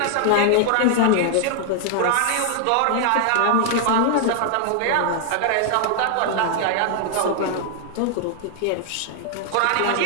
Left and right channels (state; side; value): different; both; correlation 0.00